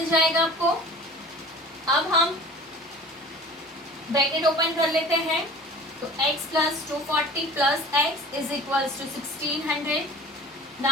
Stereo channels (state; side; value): normal; both; correlation 0.42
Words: जाएगा आपको। अब हम ब्रैकेट ओपन कर लेते हैं। तो x plus 240 plus x is equals to 1600।